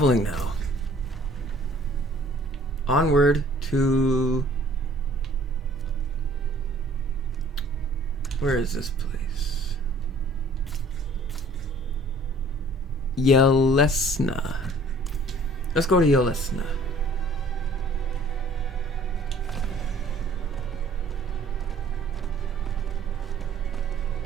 now. Onward to... Where is this place? Yelesna. Let's go to Yelesna.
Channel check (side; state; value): both; normal; correlation 0.54